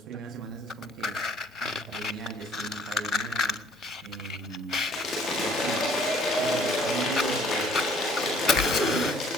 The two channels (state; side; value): normal; both; correlation 0.59